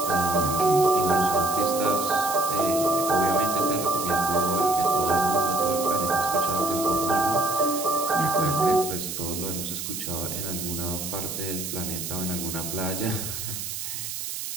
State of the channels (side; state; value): right; noise; hiss, 6 dB below the sound